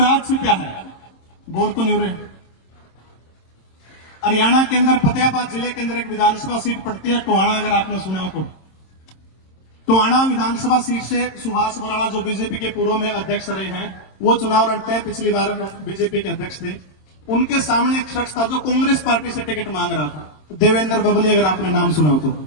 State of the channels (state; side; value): late; right; 26 ms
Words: छिपा है। बोर तो नहीं हो रहे? हरियाणा के अंदर फतेहाबाद जिले के अंदर एक विधानसभा सीट पड़ती है टोहाना, अगर आपने सुना हो तो। टोहाना विधानसभा सीट से सुभाष बराला जो बीजेपी के पूर्व में अध्यक्ष रहे हैं, वो चुनाव लड़ते हैं, पिछली बार बीजेपी के अध्यक्ष थे। उनके सामने एक शख्स था जो कांग्रेस पार्टी से टिकट मांग रहा था, देवेंद्र बबली, अगर आपने नाम सुना हो तो,